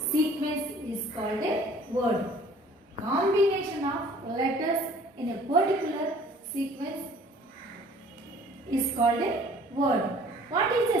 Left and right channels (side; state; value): both; normal; correlation 0.52